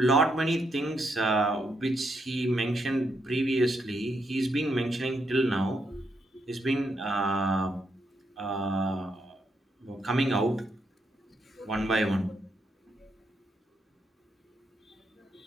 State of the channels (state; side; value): normal; both; correlation 0.78